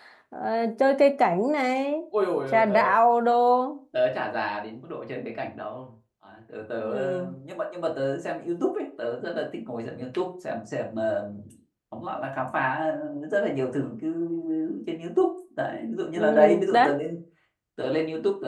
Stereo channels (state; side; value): identical; both; correlation 1.00